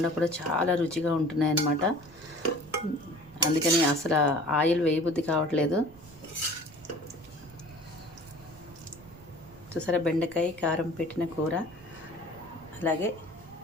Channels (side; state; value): right; noise; rumble, 22 dB below the sound